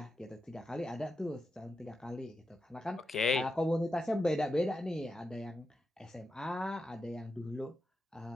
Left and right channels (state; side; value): normal; both; correlation 0.88